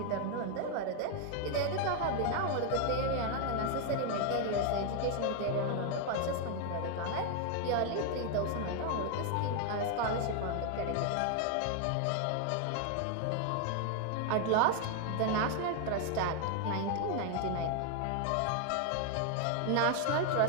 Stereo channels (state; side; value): different; both; correlation 0.00